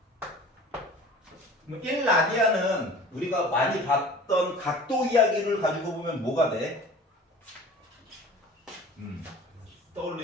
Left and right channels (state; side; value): normal; both; correlation 0.43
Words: 1라디안은 우리가 많이 봤던 각도 이야기를 가지고 보면 뭐가 돼?